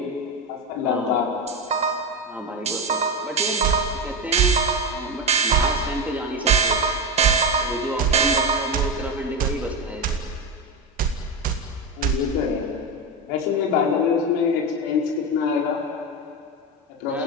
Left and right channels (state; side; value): normal; both; correlation 0.15